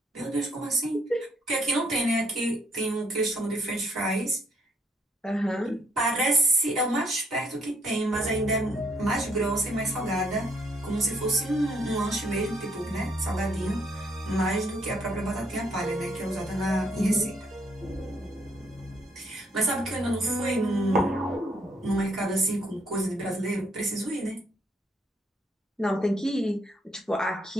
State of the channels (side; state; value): both; normal; correlation 0.69